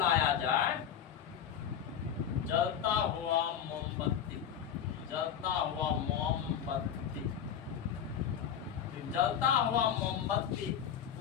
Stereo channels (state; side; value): quieter; right; 8.7 dB